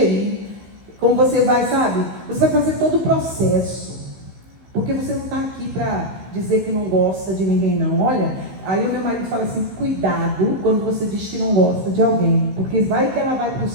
como você vai, sabe? Você vai fazer todo o processo. Porque você não está aqui para dizer que não gosta de ninguém, não. Olha, aí o meu marido fala assim, cuidado quando você diz que não gosta de alguém. Porque vai que ela vai para o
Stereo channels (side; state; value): left; late; 15 ms